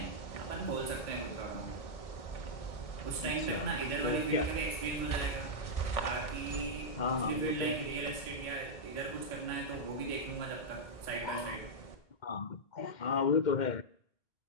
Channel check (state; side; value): late; right; 1.6 ms